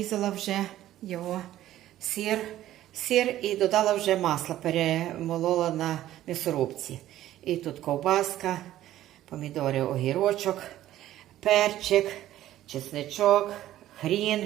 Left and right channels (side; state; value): left; quieter; 13.6 dB